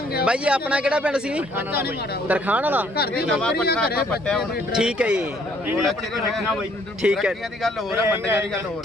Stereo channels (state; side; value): normal; both; correlation 0.64